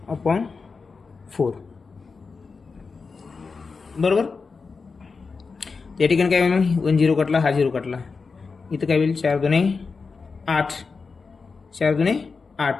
5/4. बरोबर. या ठिकाणी काय होईल? 1 0 कटला, हा 0 कटला. इथं काय होईल? 4 2 8 4 2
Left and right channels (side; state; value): right; quieter; 4.7 dB